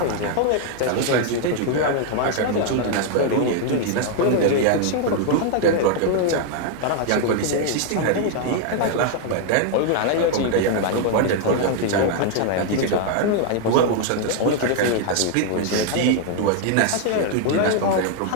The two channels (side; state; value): both; different; correlation 0.00